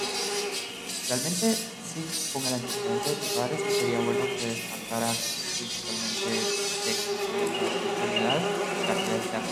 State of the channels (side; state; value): both; identical; correlation 1.00